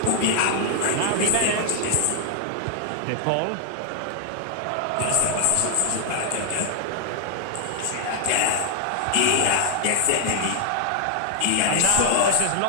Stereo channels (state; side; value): different; both; correlation 0.00